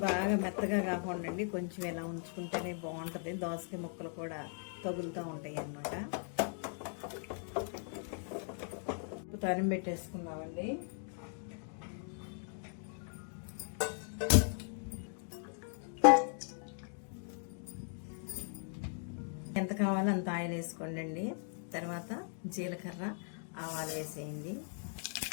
బాగా మెత్తగా కాకుండా కొంచెం ఇలా ఉంచుకుంటేనే బాగుంటుంది. దోసకాయ ముక్కలు కూడా తగులుతూ ఉంటాయి అన్నమాట. తాలింపు పెట్టేసుకుందామండి. ఎంత కావాలో అంత ఆయిల్ వేసుకోండి అండి. తర్వాత జీలకర్ర, ఆవాలు వేసేయండి.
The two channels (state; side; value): silent; right; 52 dB below the other